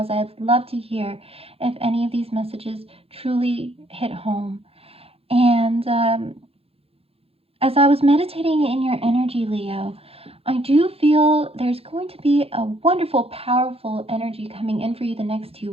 as I'd love to hear if any of these messages truly hit home. And as I was meditating in your energy, Leo, I do feel there's going to be a wonderful, powerful energy coming in for you the next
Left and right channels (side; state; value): left; late; 0.28 ms